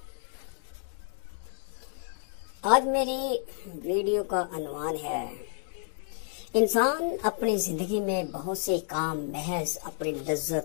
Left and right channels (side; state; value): right; silent; 58 dB below the other